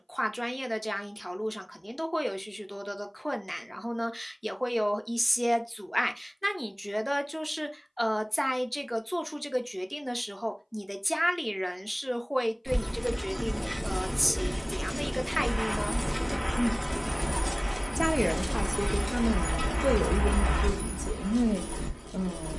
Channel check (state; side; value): identical; both; correlation 1.00